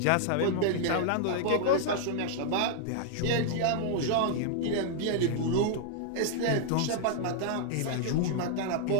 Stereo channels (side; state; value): both; different; correlation -0.01